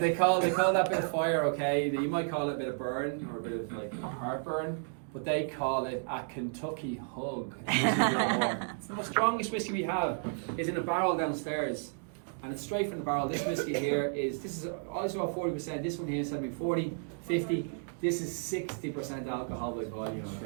call that bit of fire, okay? You might call it a bit of burn or a bit of like heartburn. But they call it a Kentucky hug. The strongest whiskey we have is in a barrel downstairs, and it's straight from the barrel. This whiskey here this is also about 40%. This one here is 40, 50. This is 60% alcohol by volume.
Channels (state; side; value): silent; left; digital silence